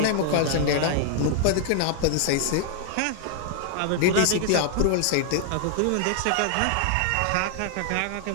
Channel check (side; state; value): both; different; correlation 0.00